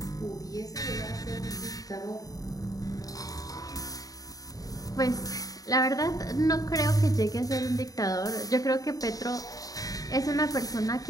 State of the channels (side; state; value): right; late; 0.18 ms